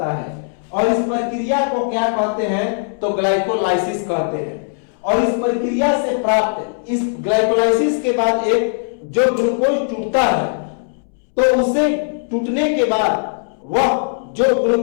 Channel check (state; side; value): silent; right; 67 dB below the other